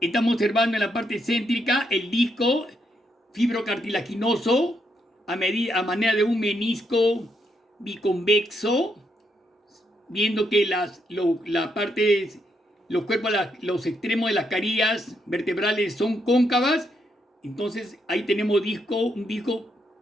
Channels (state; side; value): normal; both; correlation 0.78